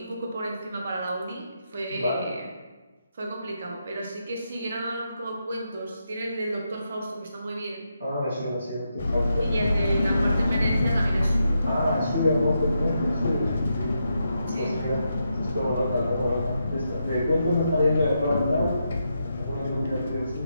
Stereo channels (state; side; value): inverted; both; correlation -0.83